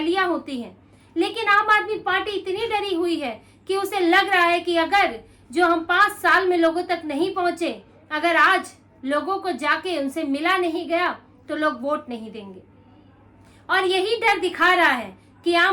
होती हैं, लेकिन आम आदमी पार्टी इतनी डरी हुई है कि उसे लग रहा है कि अगर जो हम 5 साल में लोगों तक नहीं पहुंचे, अगर आज लोगों को जाके उनसे मिला नहीं गया तो लोग वोट नहीं देंगे। और यही डर दिखा रहा है कि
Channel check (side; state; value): both; identical; correlation 1.00